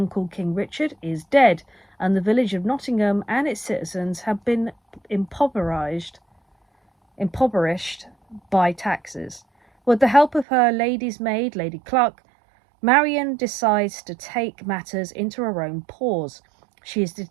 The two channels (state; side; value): drops out; left; at 10.5 s